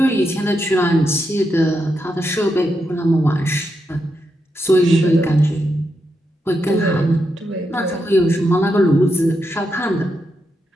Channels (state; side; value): normal; both; correlation 0.84